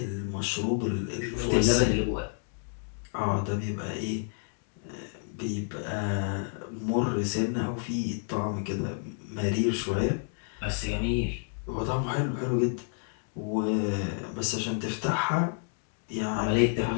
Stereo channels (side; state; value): right; silent; 58 dB below the other